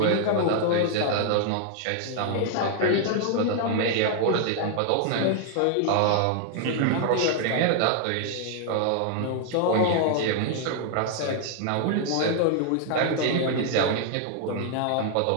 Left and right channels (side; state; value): both; different; correlation 0.00